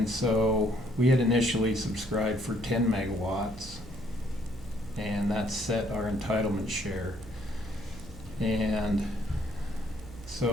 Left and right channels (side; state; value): right; noise; hum, 16 dB below the sound